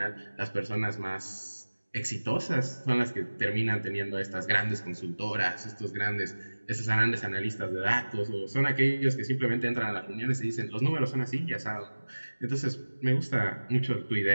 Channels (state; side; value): inverted; both; correlation -1.00